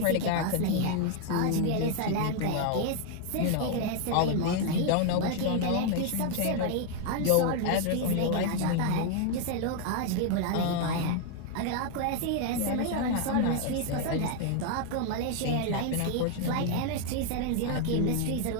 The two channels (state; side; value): different; both; correlation 0.00